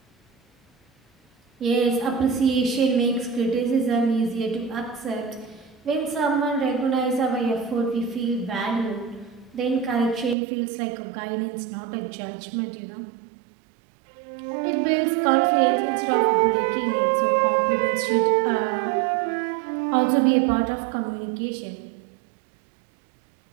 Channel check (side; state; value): left; drops out; at 10.4 s